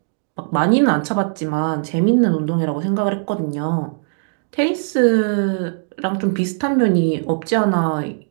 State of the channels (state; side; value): silent; left; digital silence